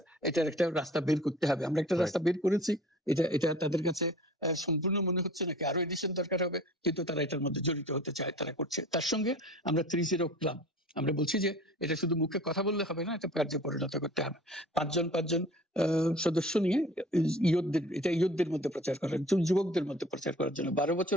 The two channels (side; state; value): both; normal; correlation 0.45